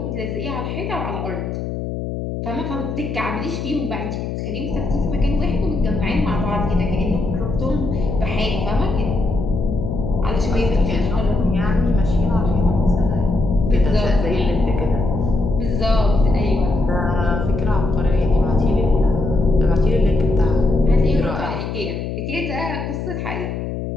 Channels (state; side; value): noise; left; hum, 5 dB below the sound